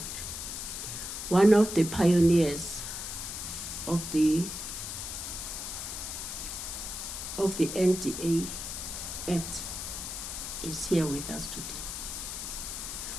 one of the pioneers of the NDA Act is here with us today.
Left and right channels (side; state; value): left; noise; hiss, 6 dB below the sound